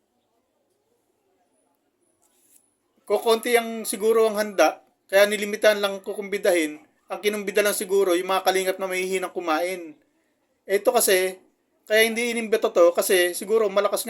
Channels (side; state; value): both; identical; correlation 1.00